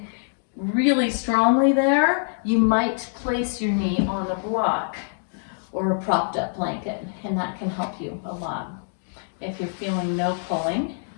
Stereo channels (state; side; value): silent; right; digital silence